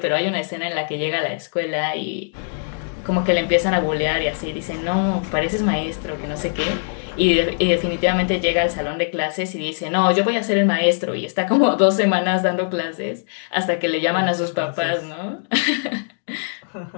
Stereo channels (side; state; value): right; silent; digital silence